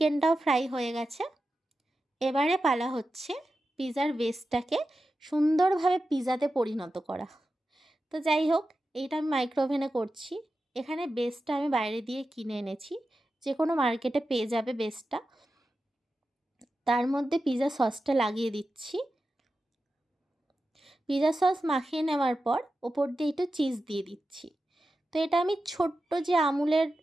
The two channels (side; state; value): both; normal; correlation 0.92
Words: ফ্রাই হয়ে গেছে। এবারে পালা হচ্ছে পিৎজার বেসটাকে সুন্দরভাবে পিৎজাতে পরিণত করা। তো যাই হোক, এইটা আমি মাইক্রোওভেনে করছি। এখানে বেসটা আমি বাইরে দিয়ে কিনে এনেছি, যে কোনো মার্কেটে পেয়ে যাবে বেসটা। তার মধ্যে পিৎজা সসটা লাগিয়ে দিচ্ছি। পিৎজা সস মাখিয়ে নেওয়ার পর ওপর দিয়ে একটু চিজ দিয়ে দিচ্ছি। তো এটা আমি ছোট্ট যে আমুলের